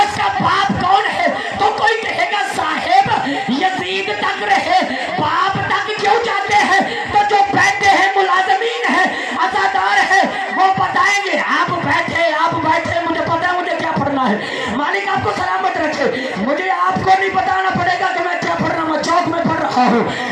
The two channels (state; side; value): identical; both; correlation 1.00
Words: کا باپ کون ہے. تو کوئی کہے گا صاحب یزید تک رہے، باپ تک کیوں جاتے ہیں؟ تو جو بیٹھے ہیں ملازمین ہیں، عزادار ہیں، وہ بتائیں گے. آپ بیٹھے، مجھے پتا ہے مجھے کیا پڑھنا ہے. مالک آپ کو سلامت رکھے. مجھے آپ کو نہیں بتانا پڑے گا کہ میں کیا پڑھ رہا ہوں. چوک میں پڑھ رہا ہوں،